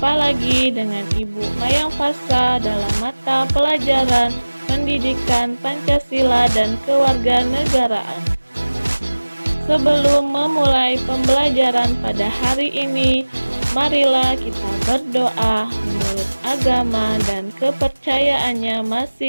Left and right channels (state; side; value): inverted; both; correlation -1.00